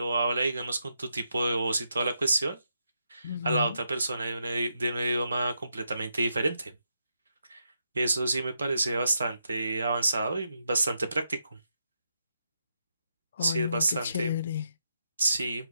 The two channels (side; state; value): both; inverted; correlation -0.82